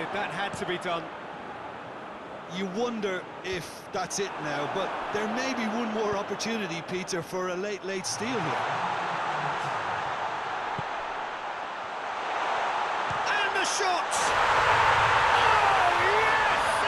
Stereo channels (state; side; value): identical; both; correlation 1.00